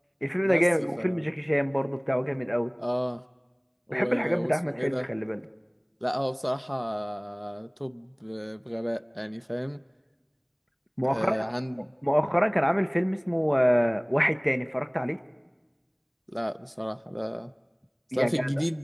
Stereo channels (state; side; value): identical; both; correlation 1.00